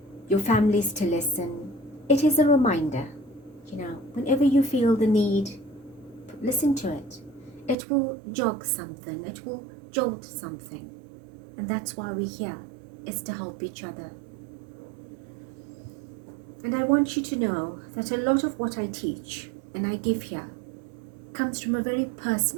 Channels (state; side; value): drops out; left; at 7.8 s